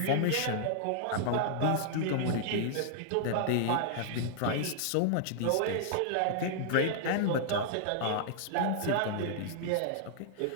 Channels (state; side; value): different; both; correlation -0.01